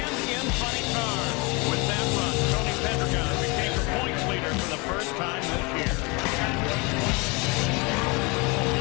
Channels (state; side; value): quieter; right; 28.0 dB